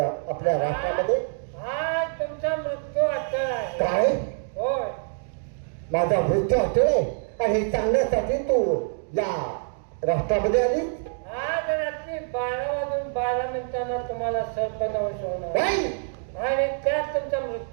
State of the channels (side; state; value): left; silent; digital silence